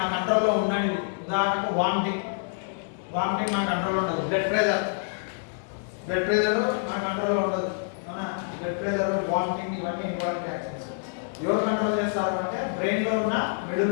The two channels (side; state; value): right; silent; digital silence